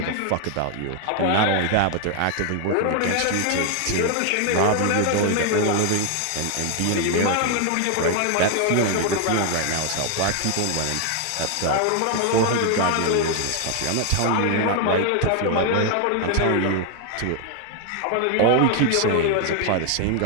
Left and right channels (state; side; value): different; both; correlation 0.00